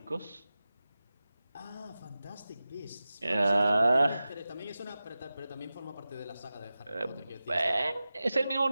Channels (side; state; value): both; inverted; correlation -0.95